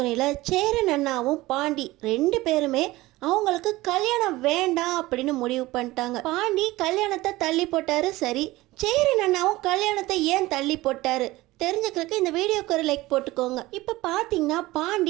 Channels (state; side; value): quieter; left; 18.8 dB